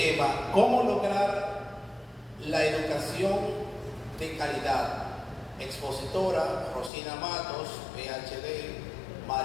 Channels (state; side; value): drops out; right; at 6.9 s